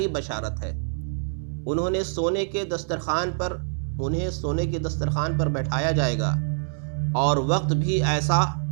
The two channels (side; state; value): left; silent; 61 dB below the other